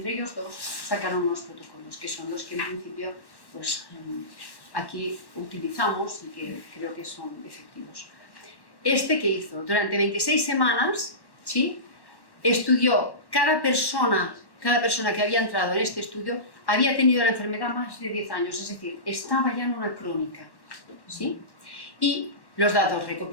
ellos dos sacaron unos protocolos, que son los que en principio pues, aquí utilizamos y que creo que son efectivos. Que hizo durante 26 semanas, ¿sí? Estudió cada persona que había entrado en este estudio había tenido la enfermedad más de 10 años, es decir, estaba ya en una crónica, ¿sí? Y los datos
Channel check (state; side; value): late; right; 1.1 ms